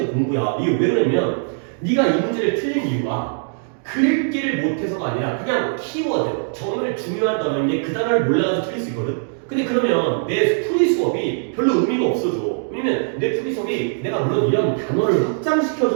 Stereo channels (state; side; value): silent; left; digital silence